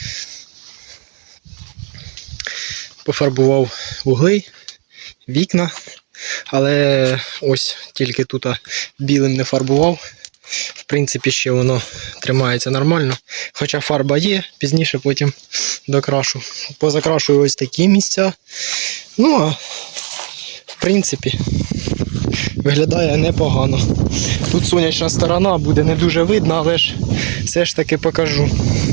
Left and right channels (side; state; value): left; quieter; 39.8 dB